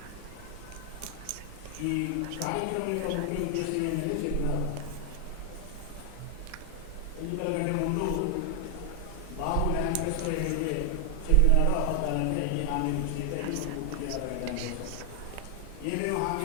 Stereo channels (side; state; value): both; different; correlation 0.00